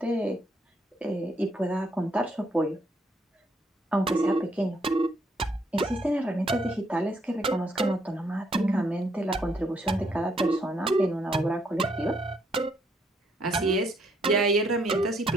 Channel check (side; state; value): both; normal; correlation 0.71